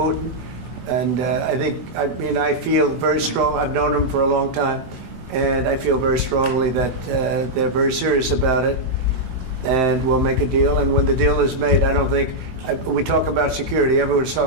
and I feel very strong. I've known him for a long time, and I feel very strongly that they're very serious about it, and we'll make a deal. And when the deal is made, I don't think, we talk about security. Everyone's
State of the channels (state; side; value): late; left; 16 ms